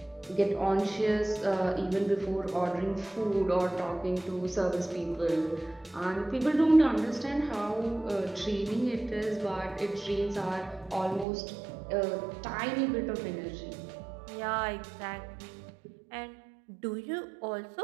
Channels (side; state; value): left; drops out; at 11.2 s